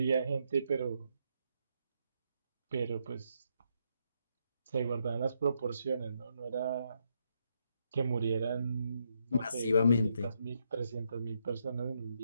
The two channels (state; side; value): inverted; both; correlation -0.78